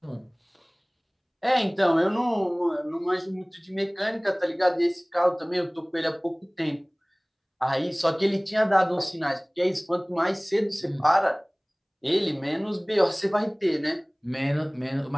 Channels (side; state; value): both; identical; correlation 1.00